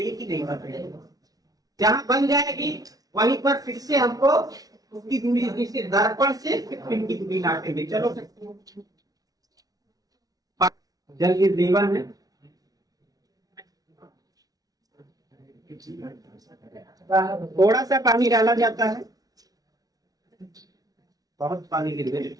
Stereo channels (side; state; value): left; late; 0.18 ms